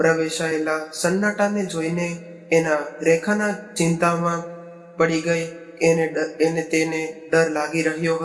સન્નાટાને જોઈને એના રેખાના ચિંતામાં પડી ગઈ. તેને ડર લાગી રહ્યો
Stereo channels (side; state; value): both; identical; correlation 1.00